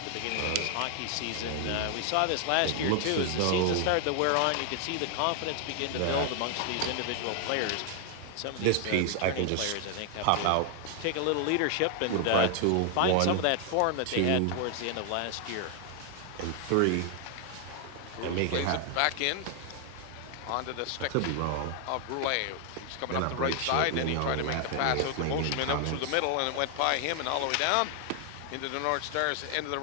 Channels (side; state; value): both; different; correlation 0.00